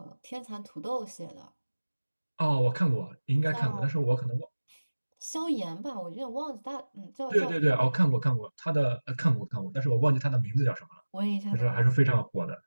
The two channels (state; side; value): inverted; both; correlation -1.00